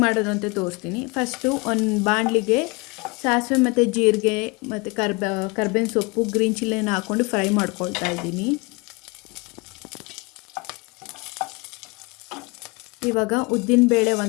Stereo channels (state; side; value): quieter; right; 27.3 dB